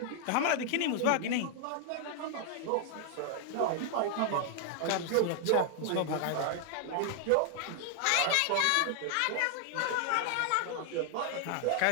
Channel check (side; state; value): both; different; correlation 0.00